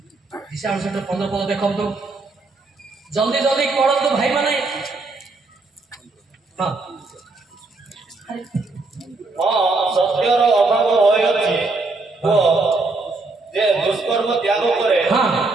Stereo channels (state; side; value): quieter; left; 3.5 dB